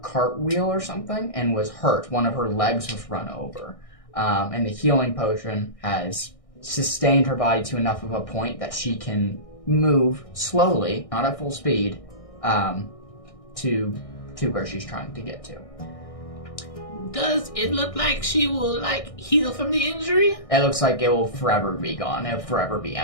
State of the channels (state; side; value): late; right; 1.6 ms